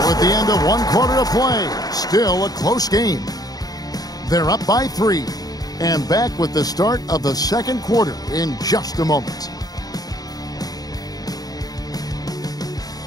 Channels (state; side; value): late; right; 0.18 ms